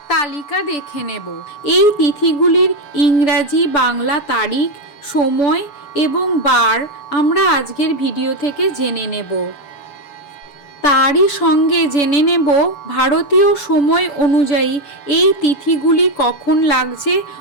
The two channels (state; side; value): late; right; 7.1 ms